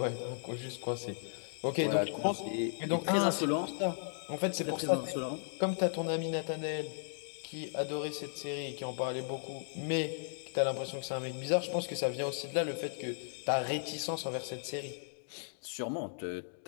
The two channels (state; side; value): silent; right; digital silence